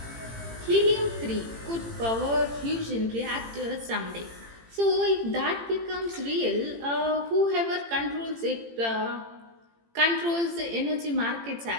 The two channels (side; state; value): left; late; 18 ms